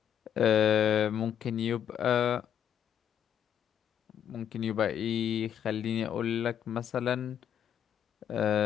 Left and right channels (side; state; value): right; quieter; 9.3 dB